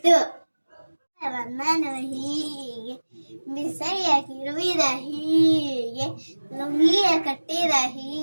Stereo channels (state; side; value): inverted; both; correlation -1.00